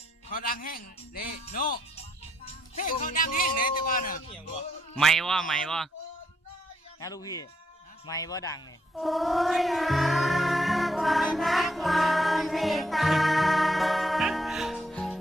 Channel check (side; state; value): both; normal; correlation 0.74